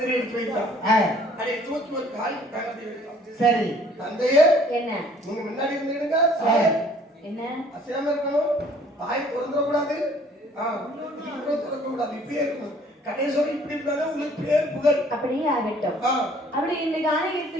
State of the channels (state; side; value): normal; both; correlation 0.57